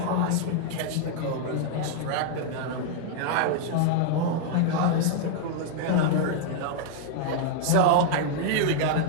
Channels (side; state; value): both; different; correlation 0.00